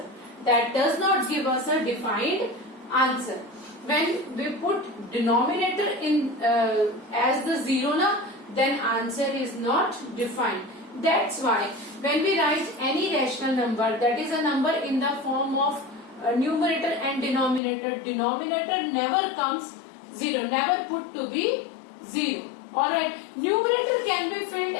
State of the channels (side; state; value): right; drops out; at 17.6 s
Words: That does not give us a defined answer. When we put denominator in as the 0 na, then answer is not defined. That's why when we write any rational number, that is a number in the form of numerator and denominator, denominator never comes 0, never put to be 0. Alright, numerator can be filled